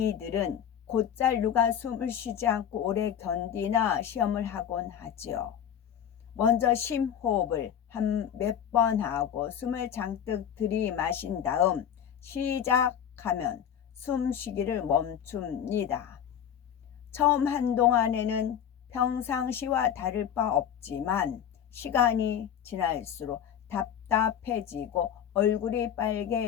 곧잘 누가 숨을 쉬지 않고 오래 견디나 시험을 하곤 하지요. 먼저 심호흡을 한 몇 번 하고 숨을 잔뜩 들이마신 다음 시작하면 숨쉬기를 멈춥니다. 처음 한동안에는 평상시와 다를 바 없지만 시간이 지날수록 답답해지고 얼굴이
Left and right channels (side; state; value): right; quieter; 9.1 dB